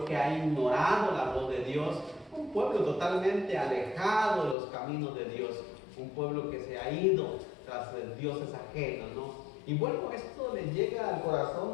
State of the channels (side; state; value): right; drops out; at 4.5 s